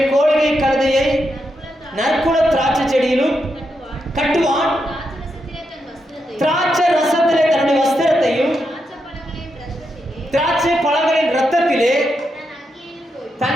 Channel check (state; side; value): normal; both; correlation 0.84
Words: கோழிகை கழுதையை நற்குல திராட்சை செடியிலும் கட்டுவான். திராட்சை ரசத்திலே தன்னுடைய வஸ்திரத்தையும் திராட்சை பழங்களின் ரத்தத்திலே